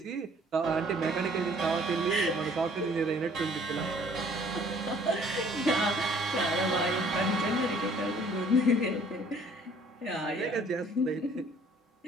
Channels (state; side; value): normal; both; correlation 0.57